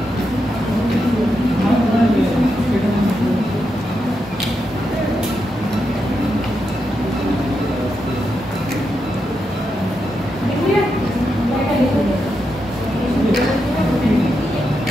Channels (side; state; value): both; normal; correlation 0.85